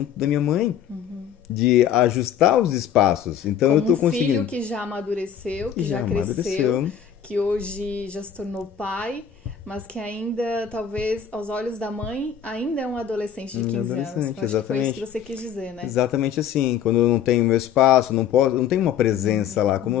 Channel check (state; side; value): quieter; right; 8.7 dB